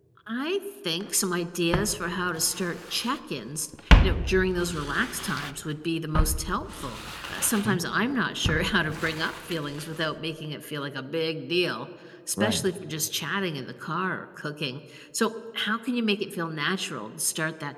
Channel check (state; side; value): identical; both; correlation 1.00